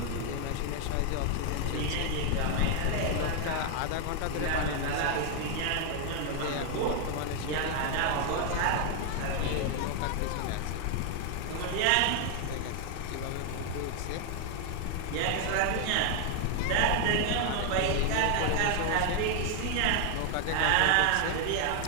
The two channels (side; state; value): both; different; correlation 0.00